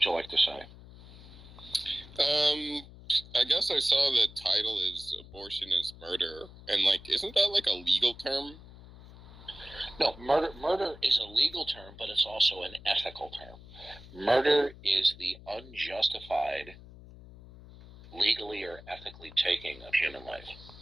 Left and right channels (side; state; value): left; noise; hum, 18 dB below the sound